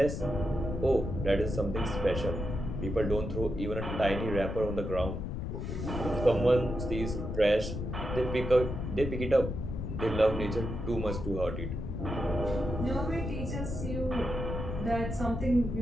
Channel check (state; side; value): noise; left; rumble, 4 dB below the sound